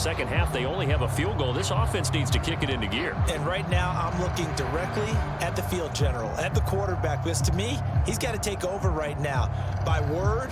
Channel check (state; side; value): identical; both; correlation 1.00